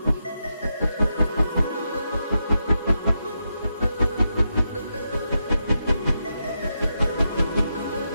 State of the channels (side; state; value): both; inverted; correlation -0.85